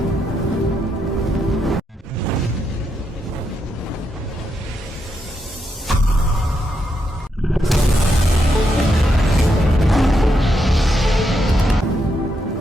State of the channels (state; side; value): normal; both; correlation 0.81